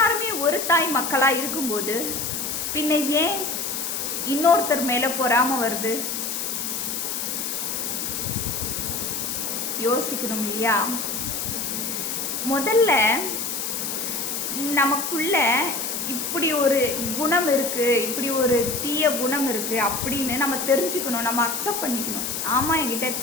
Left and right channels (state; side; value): noise; left; hiss, 3 dB below the sound